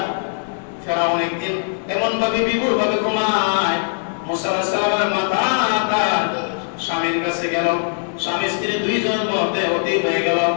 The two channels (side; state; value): right; silent; digital silence